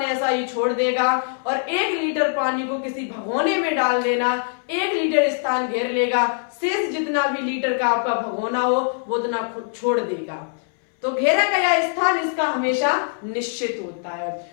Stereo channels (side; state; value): right; silent; 64 dB below the other